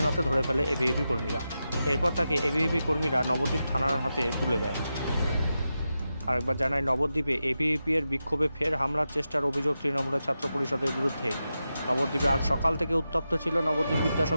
নাতে ধরে ফেলে এবিভিপি কর্মীরা। এরপর তাকে এবিভিপি কর্মীরা নবদ্বীপ থানার হাতে তুলে দেয়। আরেকবার জানায়, নবদ্বীপে এবিভিপি এর বিক্ষোভে ফের হামলার চেষ্টার অভিযোগ তৃণমূলের ছাত্র পরিষদের বিরুদ্ধে। নবদ্বীপে আজ সকাল থেকে উত্তপ্ত ছিল নবদ্বীপ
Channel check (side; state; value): both; inverted; correlation -0.90